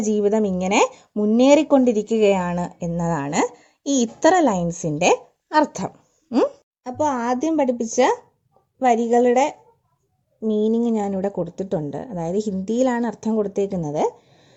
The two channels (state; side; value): identical; both; correlation 1.00